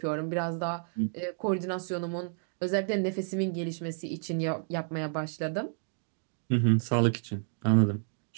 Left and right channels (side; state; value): left; silent; digital silence